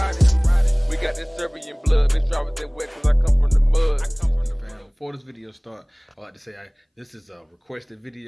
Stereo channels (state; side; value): identical; both; correlation 1.00